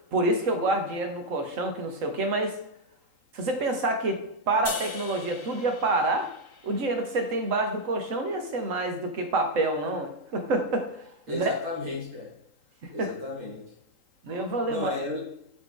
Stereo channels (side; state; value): left; late; 3.8 ms